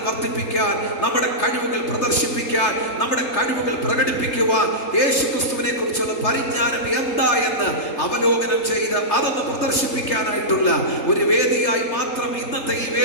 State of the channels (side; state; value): right; late; 3.3 ms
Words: വർദ്ധിപ്പിക്കാൻ, നമ്മുടെ കഴിവുകൾ പ്രദർശിപ്പിക്കാൻ, നമ്മുടെ കഴിവുകൾ പ്രകടിപ്പിക്കുവാൻ, യേശുക്രിസ്തുവിനെ കുറിച്ചുള്ള പരിജ്ഞാനം എന്താ എന്ന് അവലോകനം ചെയ്ത് അതൊന്ന് പ്രദർശിപ്പിക്കാനായിട്ടുള്ള ഒരു വേദിയായി മാത്രം ഇന്നത്തെ ഈ